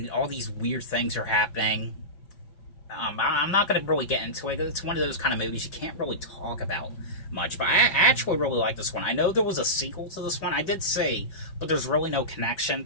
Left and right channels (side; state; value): right; late; 5.5 ms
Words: all these weird things are happening. I'm not going to really get into it. It's one of those kind of movies you can't really talk about much. But I actually really like this one. I know there was a sequel to this one. I did see, but there's really no connection